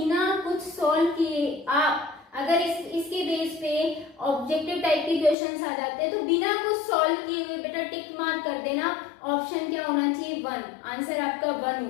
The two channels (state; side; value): drops out; right; at 5.4 s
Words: कुछ सोल्व किए आप अगर इसके बेस पे ऑब्जेक्टिव टाइप के क्वेश्चंस आ जाते हैं तो बिना कुछ सॉल्व किए हुए बेटा टिक मार्क कर देना। ऑप्शन क्या होना चाहिए 1, आंसर आपका 1